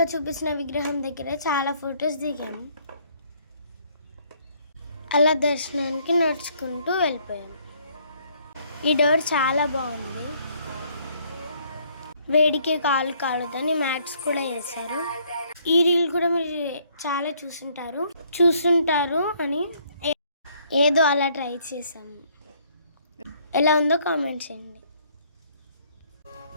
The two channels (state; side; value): inverted; both; correlation -0.65